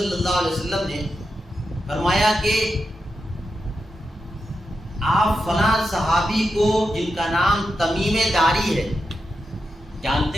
اللہ علیہ وسلم نے فرمایا کہ آپ فلاں صحابی کو جن کا نام تمیم داری ہے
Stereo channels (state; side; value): normal; both; correlation 0.88